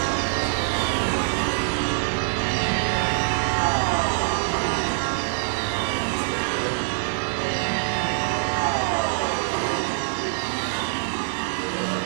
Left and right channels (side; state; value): left; silent; digital silence